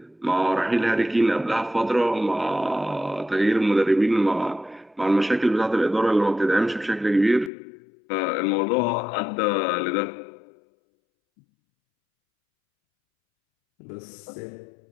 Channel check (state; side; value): drops out; right; at 7.5 s